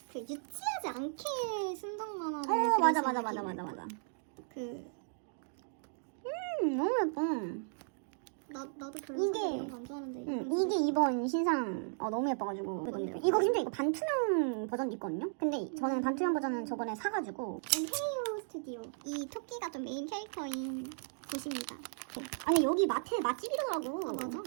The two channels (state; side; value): silent; left; digital silence